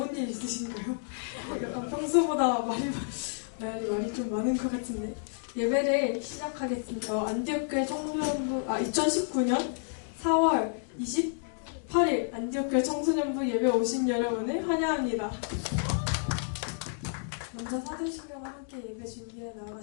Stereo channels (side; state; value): right; silent; digital silence